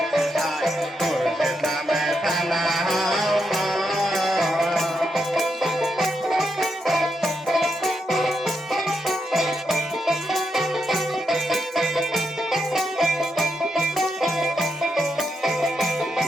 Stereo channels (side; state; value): both; normal; correlation 0.83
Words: চায় মুর্শিদ নামে থানা